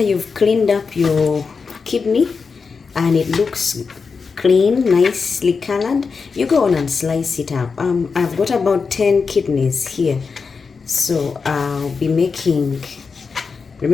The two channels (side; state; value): right; quieter; 5.1 dB